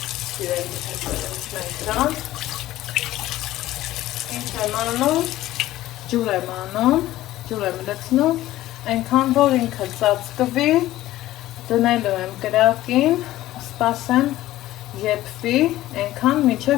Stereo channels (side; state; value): right; quieter; 15.3 dB